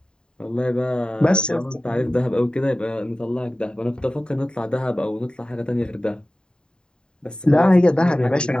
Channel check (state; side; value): late; right; 0.049 ms